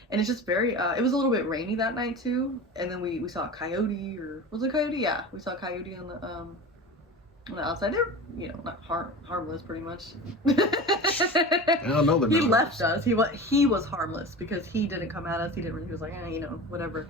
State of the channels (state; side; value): normal; both; correlation 0.32